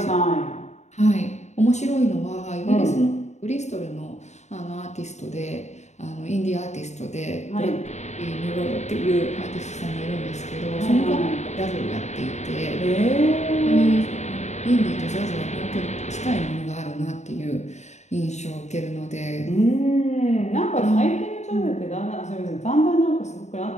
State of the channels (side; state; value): right; late; 0.33 ms